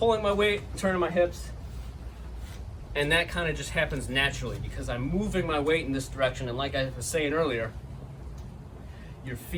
my weight, turning my hips. And that kind of just happens naturally because I'm moving my weight in this direction. And like I was saying earlier, your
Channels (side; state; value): both; identical; correlation 1.00